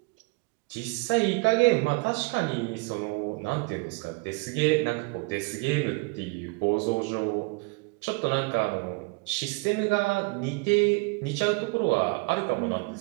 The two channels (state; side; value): quieter; left; 29.2 dB